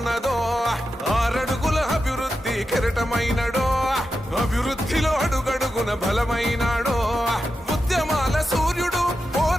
6 అడుగుల అభివృద్ధి కెరటమైనడో అభివృద్ధిలో అడుగడుగున బలమైనాడో ఉద్యమాల సూర్యుడు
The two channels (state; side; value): normal; both; correlation 0.90